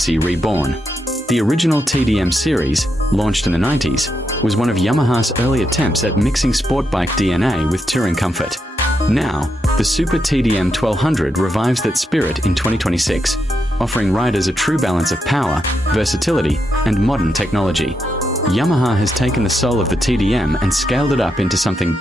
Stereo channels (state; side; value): normal; both; correlation 0.83